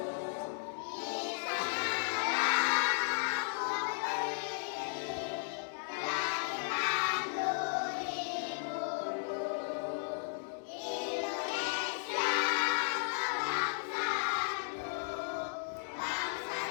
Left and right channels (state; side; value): silent; right; digital silence